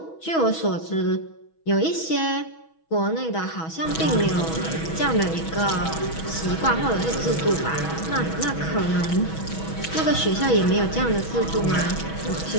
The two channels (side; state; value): right; late; 6.2 ms